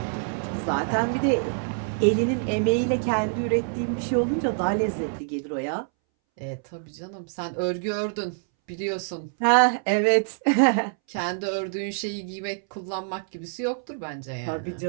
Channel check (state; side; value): silent; left; 61 dB below the other